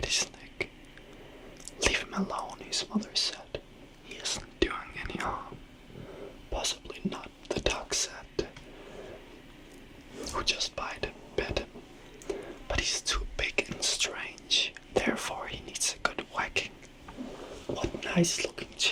his neck. Leave him alone, his mother said. He isn't doing any harm. Possibly not, the duck said, who just bit him. But he's too big and strange, therefore he needs a good whacking. What nice looking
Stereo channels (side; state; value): both; identical; correlation 1.00